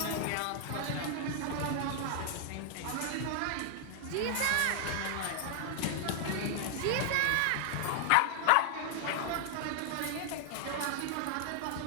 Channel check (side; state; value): both; different; correlation 0.00